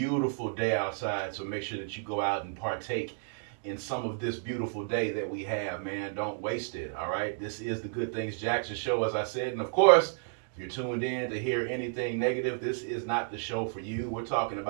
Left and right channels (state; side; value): silent; left; digital silence